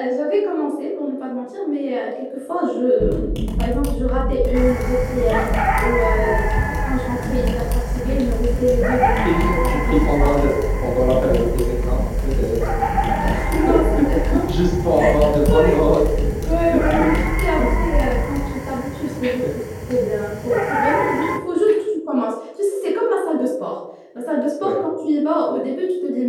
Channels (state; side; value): identical; both; correlation 1.00